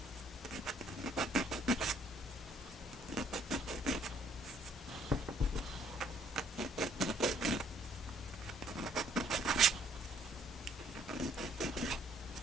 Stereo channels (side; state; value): both; normal; correlation 0.64